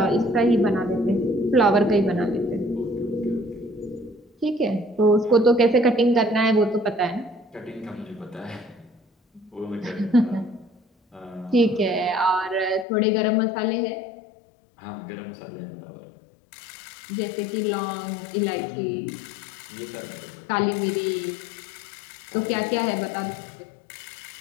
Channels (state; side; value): drops out; right; at 12.9 s